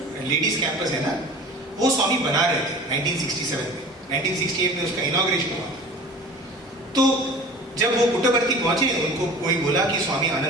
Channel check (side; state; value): both; normal; correlation 0.40